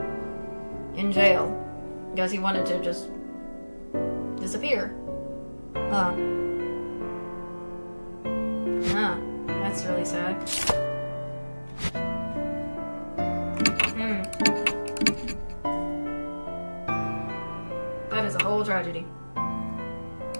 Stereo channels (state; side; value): inverted; both; correlation -1.00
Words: in jail. Guess he wanted to just disappear. That's really sad. That is a whole tragedy.